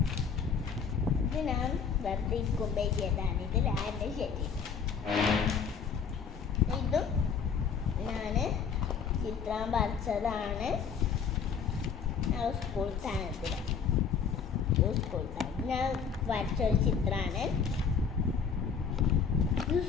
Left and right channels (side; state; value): right; quieter; 6.4 dB